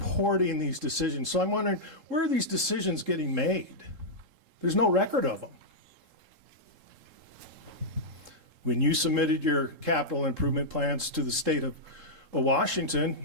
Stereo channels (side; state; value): left; late; 3.7 ms